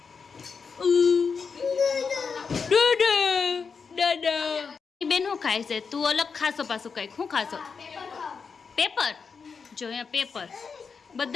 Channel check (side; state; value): right; quieter; 5.5 dB